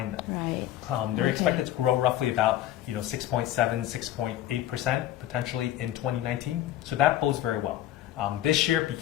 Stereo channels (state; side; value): quieter; right; 13.2 dB